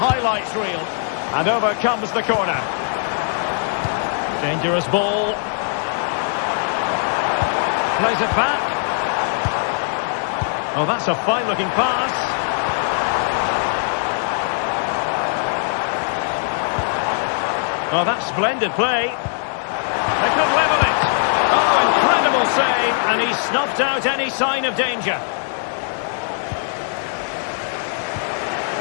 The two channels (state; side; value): silent; right; digital silence